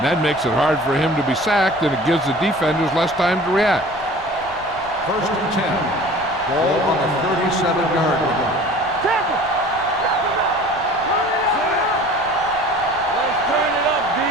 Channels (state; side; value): noise; left; rumble, 20 dB below the sound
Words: That makes it hard for him to be sacked, and it gives the defenders less time to react. First and 10. Ball on the 37-yard line. Tackle. Let's turn it up, D.